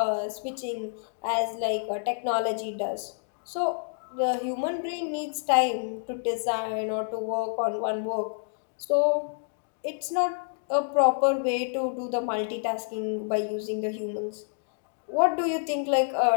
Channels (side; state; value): right; silent; digital silence